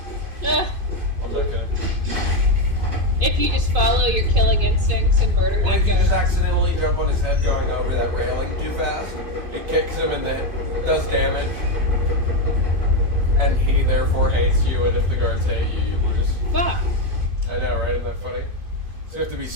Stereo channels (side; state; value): left; late; 2.5 ms